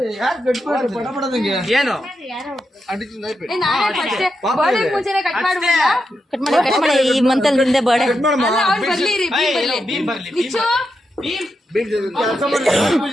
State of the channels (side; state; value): both; normal; correlation 0.86